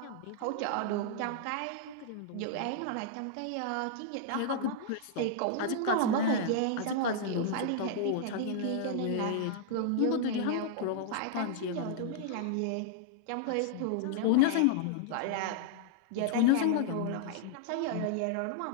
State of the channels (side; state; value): both; different; correlation -0.01